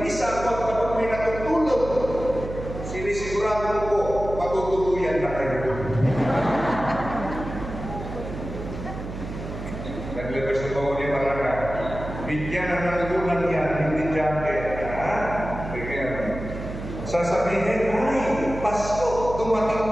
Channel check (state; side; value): noise; right; hum, 9 dB below the sound